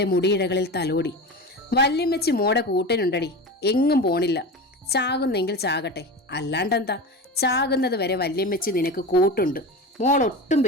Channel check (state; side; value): normal; both; correlation 0.27